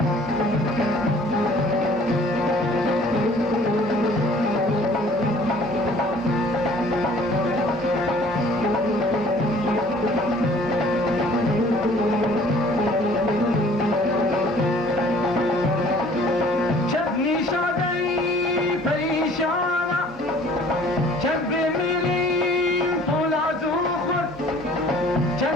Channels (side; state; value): both; normal; correlation 0.53